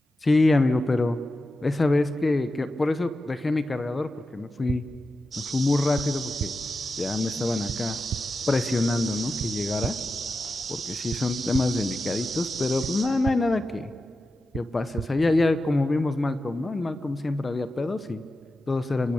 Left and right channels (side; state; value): both; normal; correlation 0.91